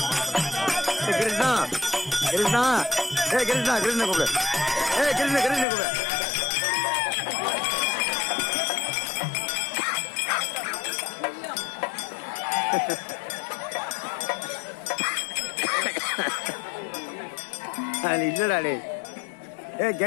கிருஷ்ணா கிருஷ்ணா கிருஷ்ணா கிருஷ்ண கூப்பிடு கிருஷ்ண கிருஷ்ண கூப்பிடு அது இல்லடா டே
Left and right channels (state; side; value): drops out; right; at 5.7 s